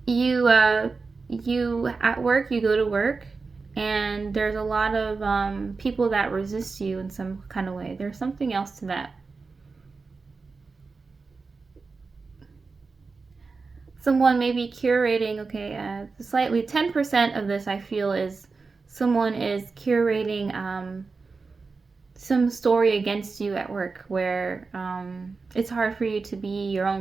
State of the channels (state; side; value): quieter; left; 4.3 dB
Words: you you at work, you go to work, and there's a lot of people that resist you in some kind of way. There's something else to that. Someone may be curating, okay, slightly 10% of this I feel is someone is curating some story against you at work where it's hard for you to be your